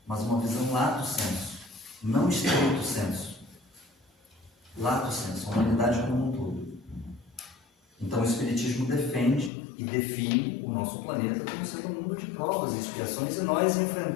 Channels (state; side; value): drops out; right; at 9.5 s